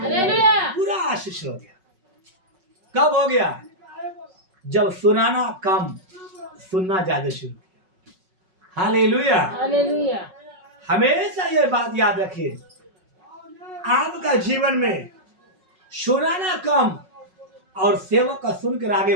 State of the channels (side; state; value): left; late; 5.4 ms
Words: पूरा आशीष हो गया। कब हो गया? जब सुनाना कम, सुनना ज्यादा शुरू किया। हालेलुया। हमेशा ये बात याद रखिए, आपका जीवन में सुनाना कम और सेवक का सुनकर आगे